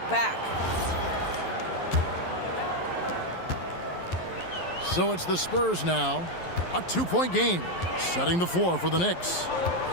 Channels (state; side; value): late; right; 11 ms